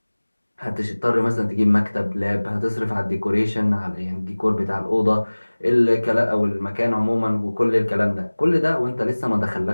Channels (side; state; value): both; inverted; correlation -1.00